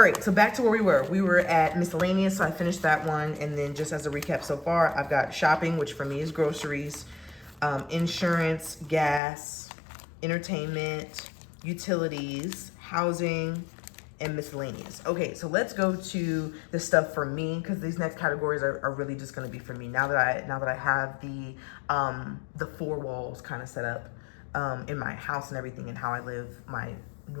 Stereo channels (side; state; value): right; drops out; at 9.2 s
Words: right, so back to where we were. We were at miscellaneous, so I finished that one. And then just as a recap so far, I've got shopping, which for me is groceries, insurance, gas, entertainment, utilities, housing, and miscellaneous. Okay, so let's go to the stuff for me, because these next categories are really just going to be for me. Now that I have the four walls kind of set up in my house and everything, and how I live my